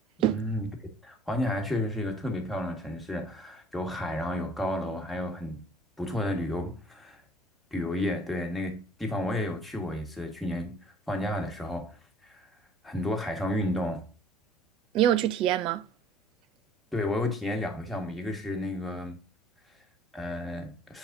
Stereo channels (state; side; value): normal; both; correlation 0.53